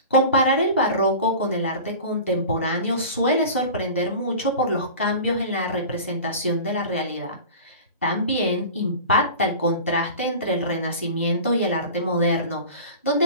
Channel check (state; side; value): inverted; both; correlation -0.37